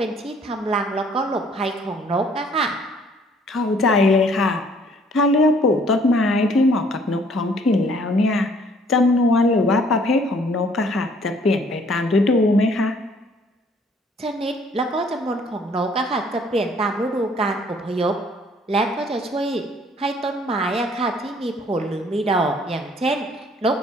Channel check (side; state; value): both; normal; correlation 0.60